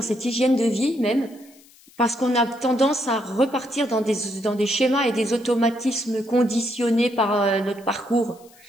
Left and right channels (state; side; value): noise; left; hiss, 26 dB below the sound